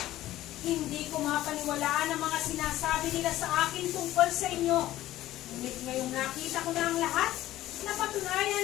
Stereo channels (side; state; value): right; quieter; 14.9 dB